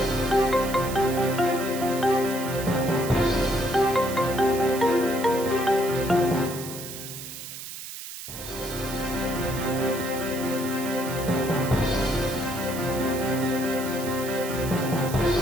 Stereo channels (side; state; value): right; noise; hiss, 10 dB below the sound